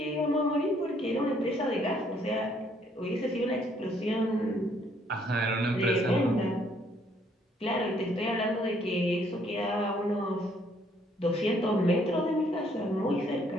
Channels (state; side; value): normal; both; correlation 0.66